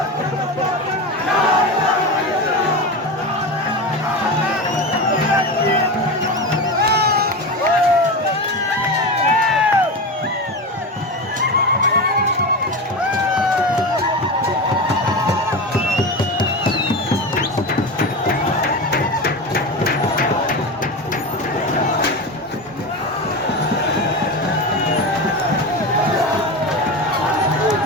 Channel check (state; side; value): normal; both; correlation 0.22